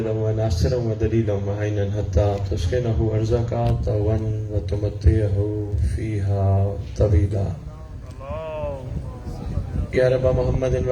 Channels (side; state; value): both; identical; correlation 1.00